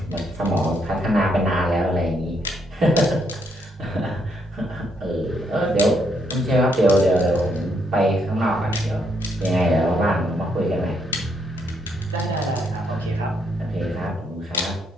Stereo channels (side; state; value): both; normal; correlation 0.75